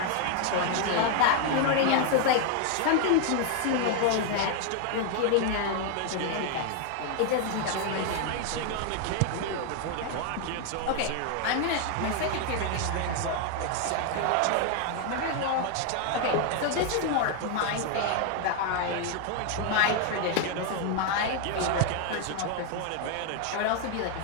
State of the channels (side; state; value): both; different; correlation 0.00